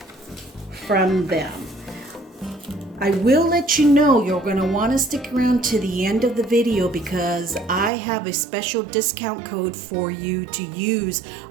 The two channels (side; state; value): left; drops out; at 7.9 s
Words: from them. I will let you know you're going to want to stick around to the end of the video because I have a special discount code for you to use